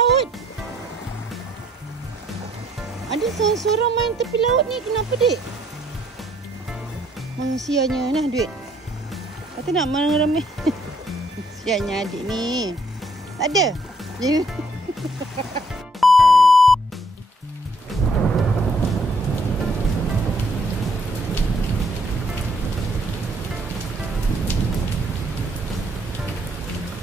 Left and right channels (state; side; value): normal; both; correlation 0.66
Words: Ada seorang-seorang main tepi laut ni, kenapa dek? Sianya nah duit. Kata nak ramai. Sianya adik ni. Tak ada.